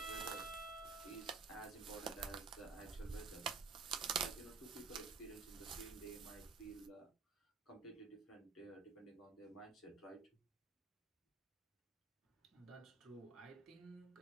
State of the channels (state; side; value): quieter; left; 4.9 dB